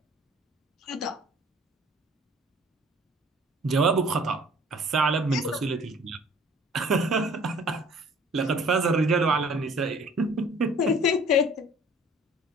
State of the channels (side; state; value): both; normal; correlation 0.52